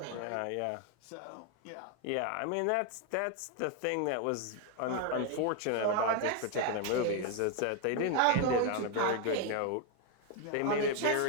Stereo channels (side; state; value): both; different; correlation 0.01